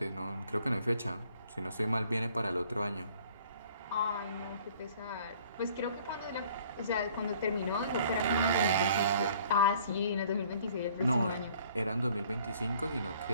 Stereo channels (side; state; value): both; inverted; correlation -0.56